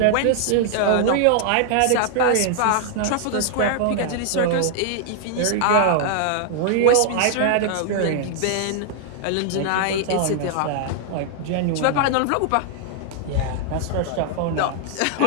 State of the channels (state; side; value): different; both; correlation 0.00